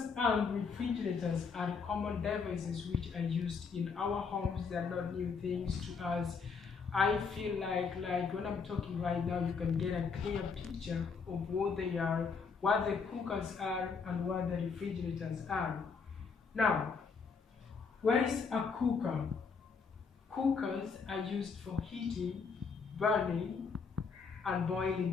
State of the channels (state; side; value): quieter; right; 5.3 dB